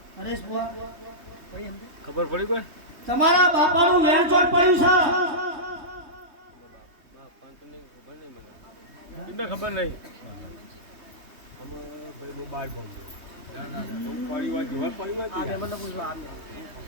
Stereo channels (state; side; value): late; left; 3.2 ms